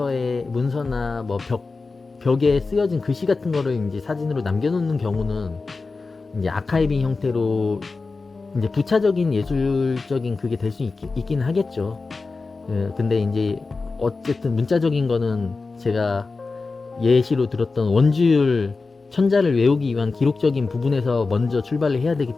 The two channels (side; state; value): right; quieter; 4.0 dB